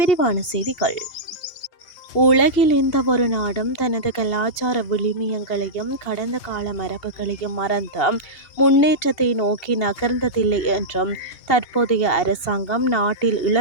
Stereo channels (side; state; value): right; late; 2.8 ms